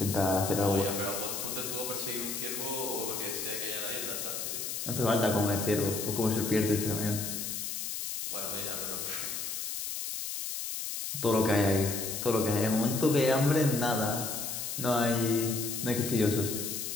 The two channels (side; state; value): left; noise; hiss, 4 dB below the sound